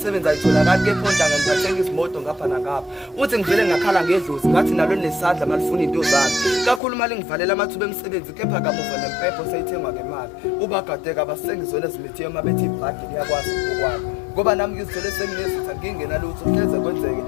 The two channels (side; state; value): right; drops out; at 6.8 s